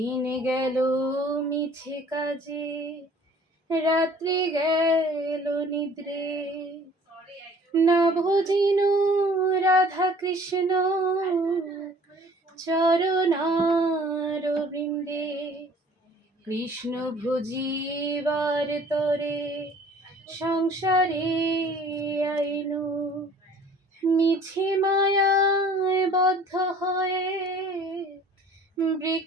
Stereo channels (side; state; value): both; normal; correlation 0.51